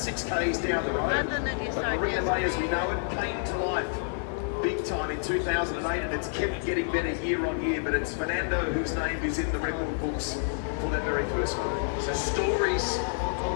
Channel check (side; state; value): right; silent; digital silence